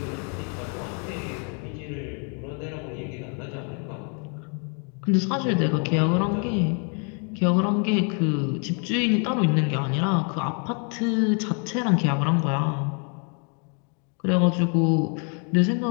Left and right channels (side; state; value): right; quieter; 39.1 dB